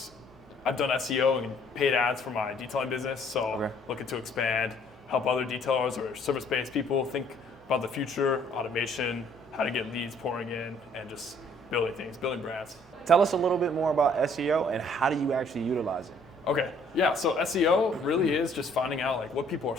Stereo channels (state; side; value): normal; both; correlation 0.61